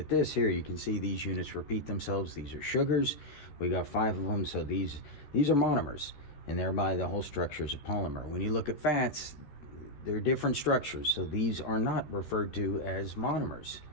this here, you can see these units repeat themselves. These are sugars. We got 5 of them, so these are monomers, and thereby the whole structure is a polymer. When you look at fats, they're different structures, so these are not referred to as monomers,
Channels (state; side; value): late; right; 14 ms